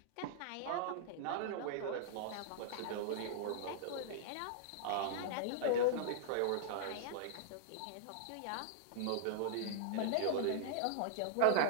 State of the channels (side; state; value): both; different; correlation -0.01